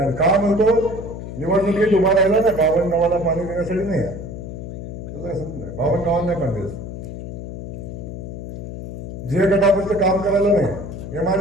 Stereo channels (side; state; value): left; noise; hum, 9 dB below the sound